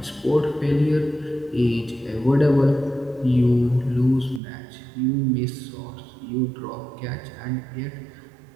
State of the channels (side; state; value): left; drops out; at 4.4 s